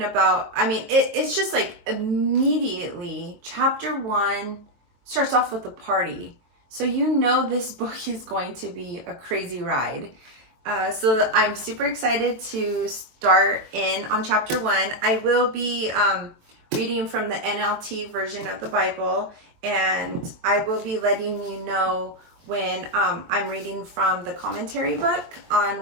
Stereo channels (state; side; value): late; left; 23 ms